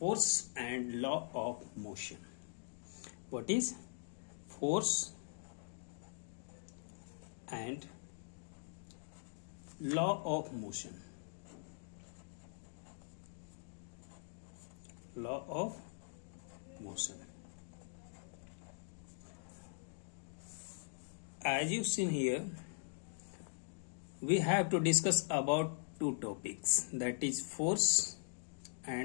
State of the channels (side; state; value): right; silent; digital silence